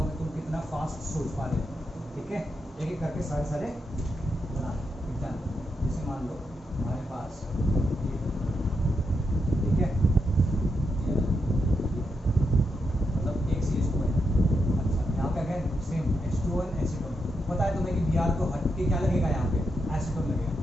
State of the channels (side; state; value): both; normal; correlation 0.84